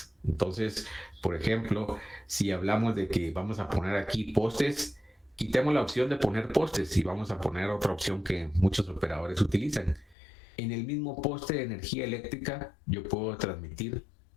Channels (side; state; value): right; drops out; at 10.2 s